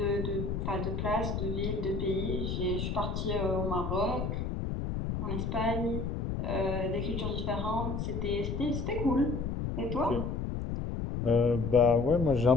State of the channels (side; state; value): left; noise; rumble, 2 dB below the sound